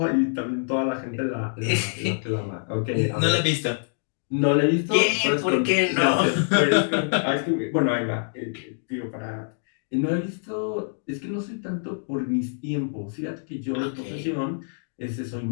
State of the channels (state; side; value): silent; right; digital silence